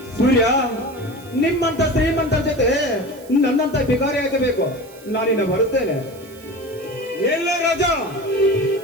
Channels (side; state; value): right; noise; hiss, 23 dB below the sound